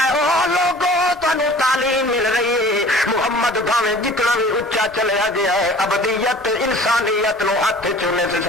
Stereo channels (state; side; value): normal; both; correlation 0.46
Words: ہے او لوگو تانوں تعلیم مل رہی ہے، محمد بھاویں جتنا بھی اچا چلیا گیا ہے ابدیت انسانیت نو ہاتھ چونے سے